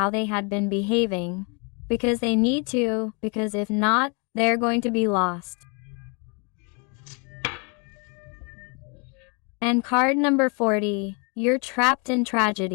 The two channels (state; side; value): quieter; right; 34.5 dB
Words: they had been behaving. Because they need to, because if not, they're going to be lost. And card number 40, you're trapped in